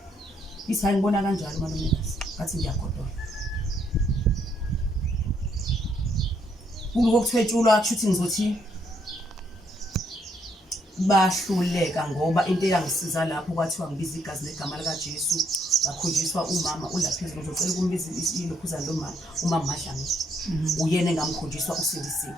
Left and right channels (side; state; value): both; normal; correlation 0.73